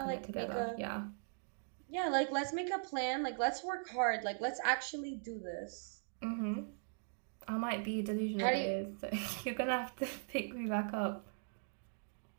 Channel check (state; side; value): silent; left; digital silence